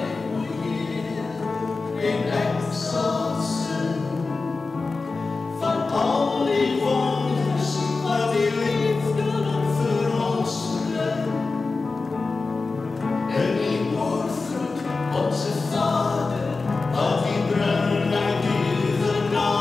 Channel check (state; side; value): quieter; right; 3.9 dB